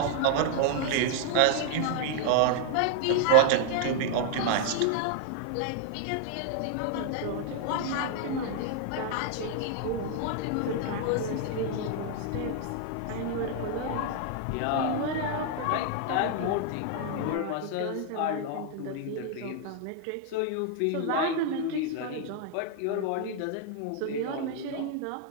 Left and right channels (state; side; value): different; both; correlation 0.00